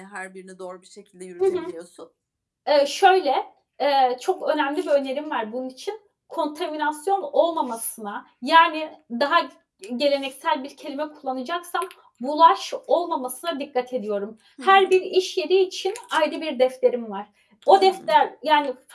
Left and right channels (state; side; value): identical; both; correlation 1.00